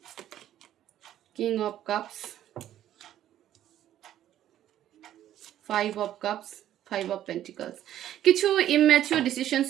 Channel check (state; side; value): quieter; left; 11.9 dB